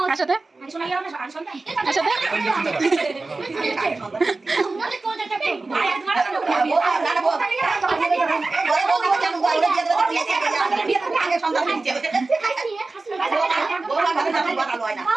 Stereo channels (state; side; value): quieter; left; 3.5 dB